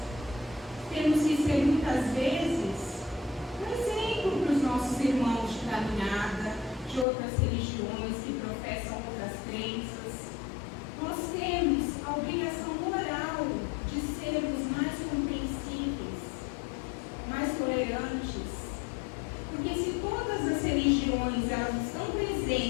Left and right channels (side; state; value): right; drops out; at 7.1 s